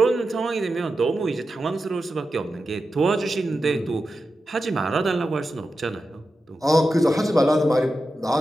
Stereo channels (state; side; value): normal; both; correlation 0.91